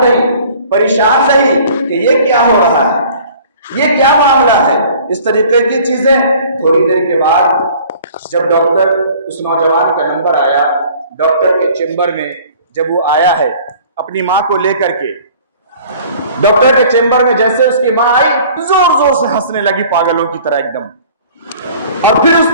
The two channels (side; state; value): both; inverted; correlation -0.50